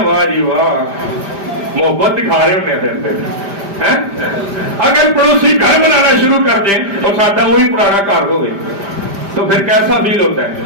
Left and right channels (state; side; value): late; left; 5.0 ms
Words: वाह जी वाह, मोहब्बत दिखा रहे होने हैं। अगर पड़ोसी घर बनाना शुरू कर दें और साਡਾ वही पुराना घर हो तो फिर कैसा फील होता